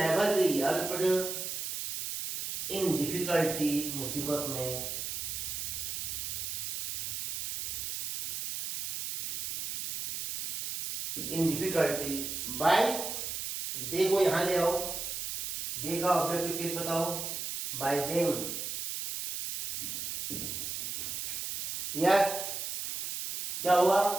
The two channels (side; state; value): right; noise; hiss, 4 dB below the sound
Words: be helped in difficulty, मुसीबत में, इन डिफिकल्टी, बाय, दे को यहां ले आओ, दे का ऑब्जेक्टिव केस बताओ, बाय देम, नेक्स्ट क्या हुआ,